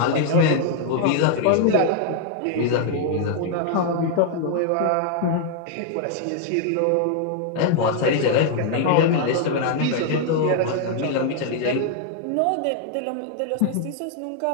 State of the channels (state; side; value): different; both; correlation 0.00